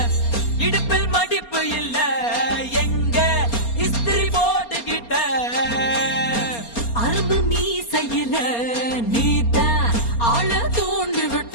இடுப்பில் மடிப்பு இல்ல எங்க இஸ்திரி போட்டுக்கிட்ட அரும்பு மீசையில நீத்த ஆள தோண்டி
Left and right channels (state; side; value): late; right; 4.3 ms